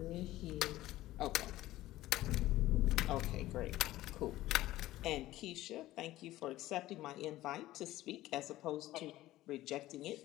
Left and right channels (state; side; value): quieter; right; 15.9 dB